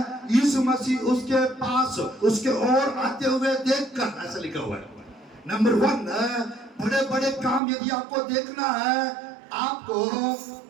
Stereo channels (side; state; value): left; drops out; at 7.6 s